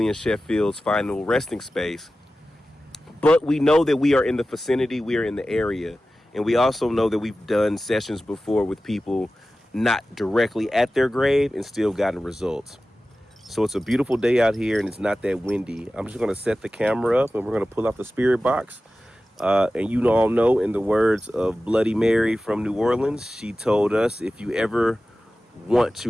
Sheffield's final resting space. But we know that we are in the vicinity, we are in the area. And we also know that we've done sessions before with people not directly at their grave and still gotten results. So it's a beautiful day out here and it's not that windy. I'm just gonna set the camera up and we're gonna pull out the spirit box. And you all know, in the words of Bloody Mary from New Orleans, she told us, if you ever want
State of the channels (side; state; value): both; normal; correlation 0.95